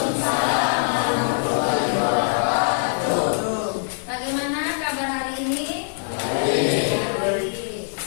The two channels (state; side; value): silent; right; digital silence